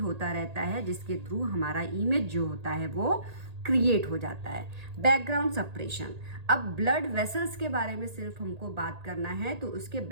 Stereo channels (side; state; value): left; late; 1.8 ms